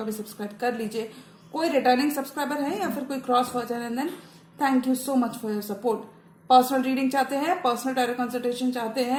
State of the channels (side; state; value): both; identical; correlation 1.00